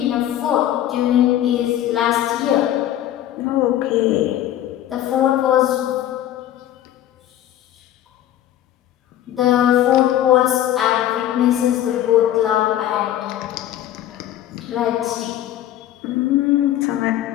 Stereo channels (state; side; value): quieter; right; 12.3 dB